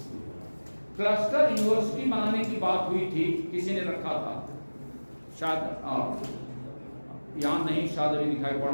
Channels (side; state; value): both; inverted; correlation -1.00